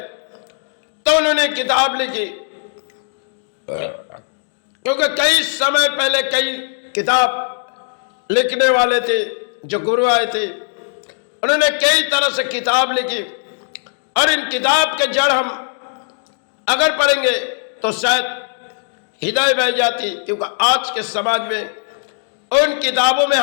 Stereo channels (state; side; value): silent; right; 67 dB below the other